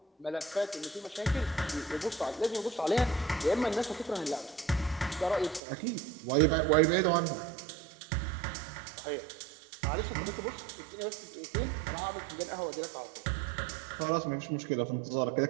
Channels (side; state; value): left; drops out; at 5.6 s